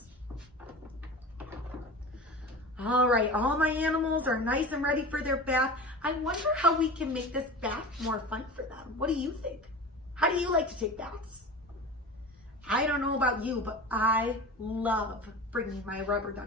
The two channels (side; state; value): both; normal; correlation 0.32